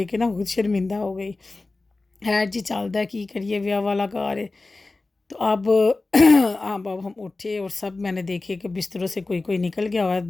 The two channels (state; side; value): quieter; right; 3.3 dB